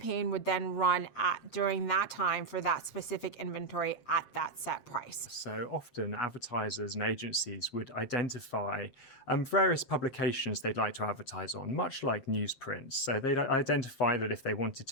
would then run during that time for that specific inventory at that set price. So often advertisers and agencies would identify various publications they'd like to advertise on, much like newsprints. So they'd identify that if they wanted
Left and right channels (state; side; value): late; right; 7.5 ms